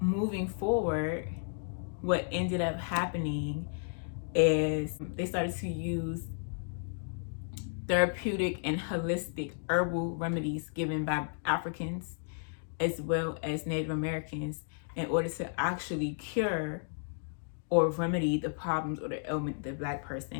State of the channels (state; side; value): silent; right; digital silence